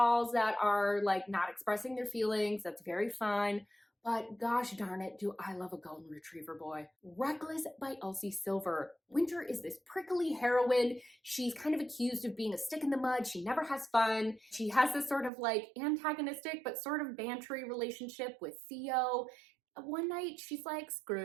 that are like not expressing their feelings. That's very fun. But gosh darn it, do I love a golden retriever boy. Reckless by Elsie Silver. Winter is this prickly heroine. She's kind of accused of being a stick in the mud. She never has fun. She has this sort of like antagonistic but sort of bantery relationship with Theo. One night she's like, screw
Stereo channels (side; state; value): left; drops out; at 15.3 s